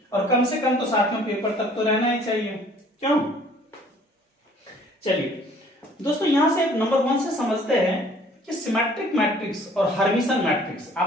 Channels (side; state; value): both; normal; correlation 0.55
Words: और कम से कम तो साथियों पेपर तक तो रहना ही चाहिए, क्यों। चलिए दोस्तों यहां से नंबर 1 से समझते हैं कि सिमेट्रिक मैट्रिक्स और हर्मिशन मैट्रिक्स,